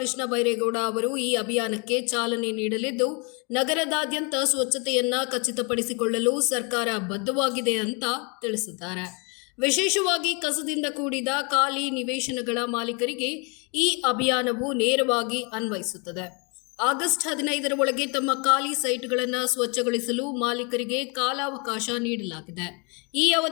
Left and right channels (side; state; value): right; quieter; 33.2 dB